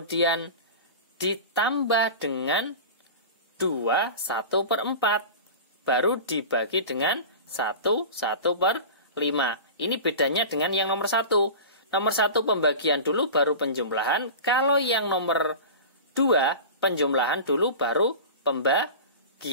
ditambah dengan 2 1/4 baru dibagi dengan 1 1/5. Ini bedanya dengan yang nomor 1. Nomor 1 pembagian dulu baru penjumlahan. Kalau yang nomor 2 penjumlahan dulu baru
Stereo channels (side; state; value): both; inverted; correlation -0.32